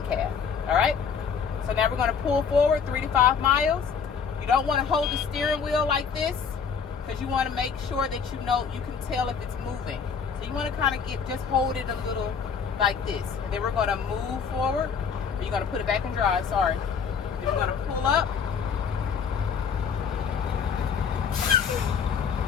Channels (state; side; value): quieter; right; 6.4 dB